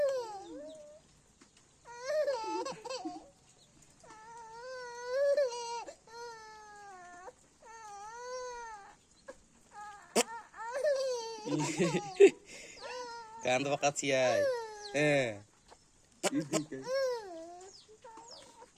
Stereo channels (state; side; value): identical; both; correlation 1.00